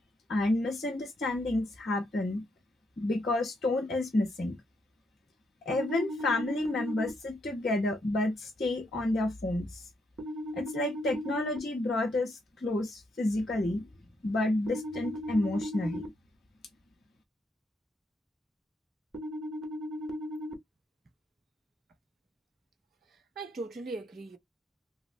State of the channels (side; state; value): both; normal; correlation 0.77